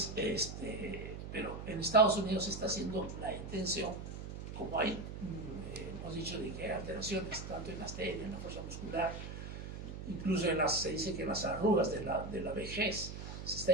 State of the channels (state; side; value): noise; right; hum, 8 dB below the sound